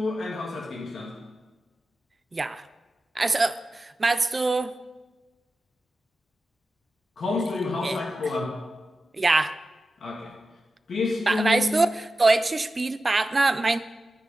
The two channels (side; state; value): both; normal; correlation 0.93